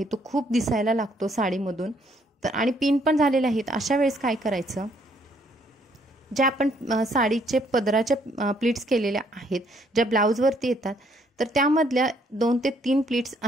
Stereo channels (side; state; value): both; normal; correlation 0.68